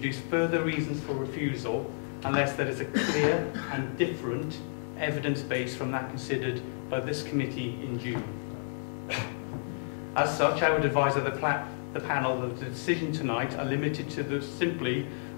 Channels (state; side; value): silent; right; digital silence